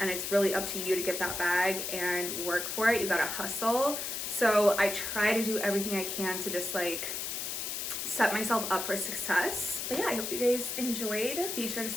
it's really up to you to get that bag and work for it. You gotta hustle. So I try to do everything I can to just like set myself up for success. But yeah, I hope you guys enjoyed. Be sure to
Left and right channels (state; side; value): noise; left; hiss, 3 dB below the sound